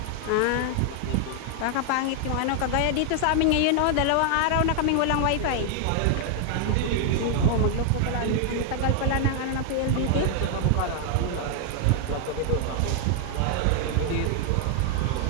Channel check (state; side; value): different; both; correlation 0.00